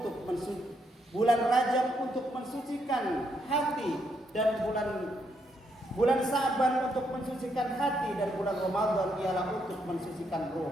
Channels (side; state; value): both; normal; correlation 0.76